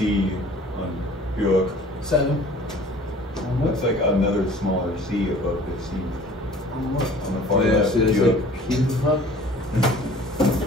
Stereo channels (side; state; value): both; normal; correlation 0.49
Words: on Bjork? 7. Looks like another smaller sea above the sea. On the far yeah, left. see, it's Bjork. like cube pup. The